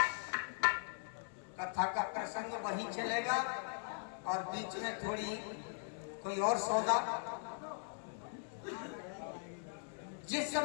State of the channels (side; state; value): right; silent; digital silence